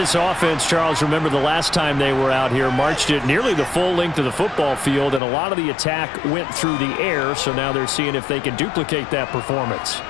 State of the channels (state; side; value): drops out; right; at 5.2 s